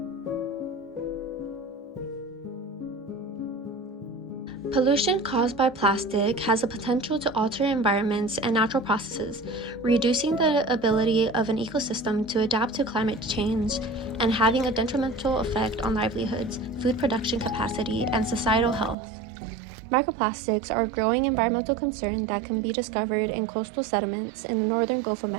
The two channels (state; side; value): drops out; left; at 18.9 s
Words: Pollution caused by plastic has the potential to alter environments and natural processes, reducing the ability of an ecosystem to adapt to climate change and having a detrimental effect on livelihoods, food production capacity, and societal health. Microplastics are a growing environmental concern that can be discovered in coastal sediments in the northern Gulf of